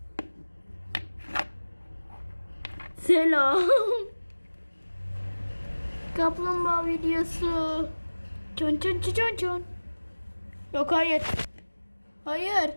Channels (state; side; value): inverted; both; correlation -1.00